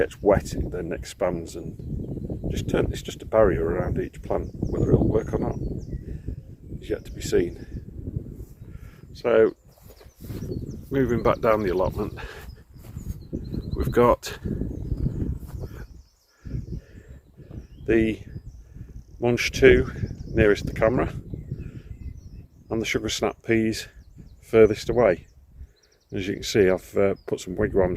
wet, it then expands and it's just a barrier around each plant. Whether it'll work or not is yet to be seen. So moving back down the allotment, we've got the Munch 2 nearest the camera, and the sugar snap peas furthest away. As you can see, I've put some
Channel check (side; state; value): both; identical; correlation 1.00